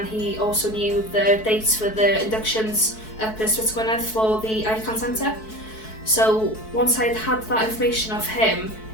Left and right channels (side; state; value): right; late; 4.6 ms